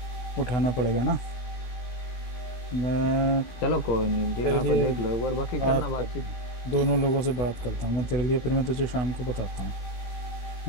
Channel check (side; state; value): right; late; 17 ms